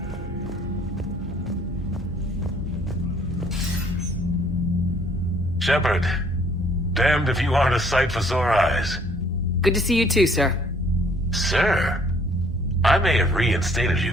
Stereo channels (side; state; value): both; normal; correlation 0.60